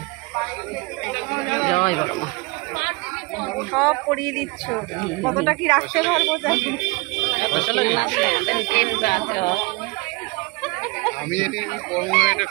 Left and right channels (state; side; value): quieter; left; 26.8 dB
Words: জয় বড় মা। সব পরিয়ে দিচ্ছ, কতটা কি রাখতে পারবো জানি